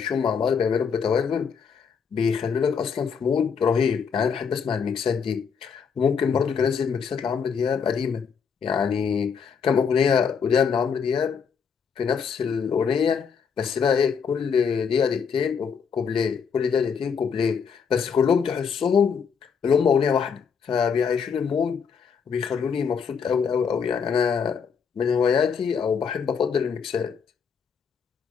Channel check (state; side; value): quieter; right; 6.4 dB